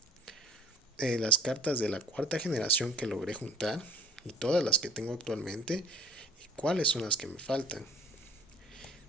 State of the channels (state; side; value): normal; both; correlation 0.50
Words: las cartas de la cuarta generación que logré juntar y todas las que tengo actualmente y cuáles son las que me faltan.